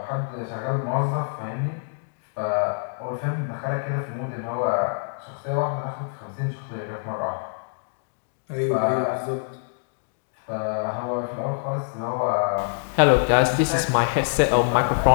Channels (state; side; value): silent; right; digital silence